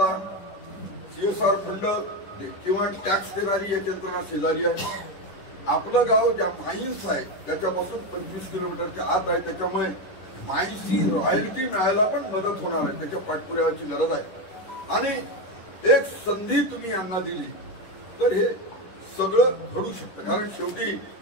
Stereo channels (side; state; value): right; late; 10 ms